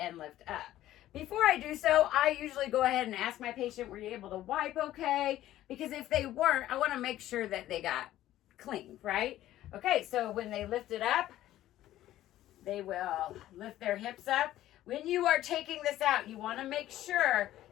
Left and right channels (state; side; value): quieter; right; 13.8 dB